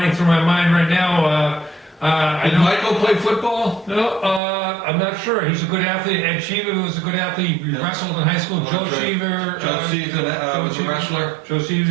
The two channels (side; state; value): left; drops out; at 4.4 s